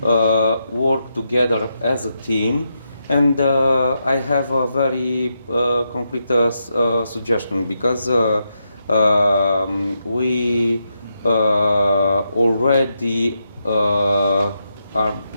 work together as a team. And I have a very concrete suggestion, because we already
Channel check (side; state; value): both; inverted; correlation -0.83